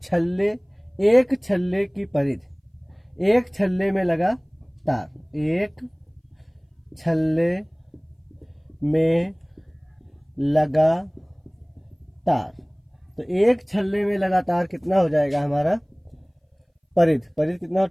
छल्ले, एक छल्ले की परिधि, एक छल्ले में लगा तार, एक छल्ले में लगा तार। तो एक छल्ले में लगा तार कितना हो जाएगा हमारा? परिधि, परिधि कितना?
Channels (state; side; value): identical; both; correlation 1.00